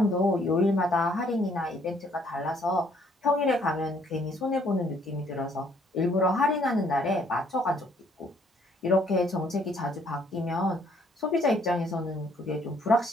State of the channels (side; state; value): both; normal; correlation 0.65